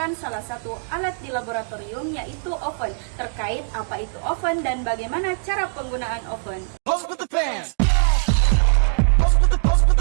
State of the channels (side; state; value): left; silent; digital silence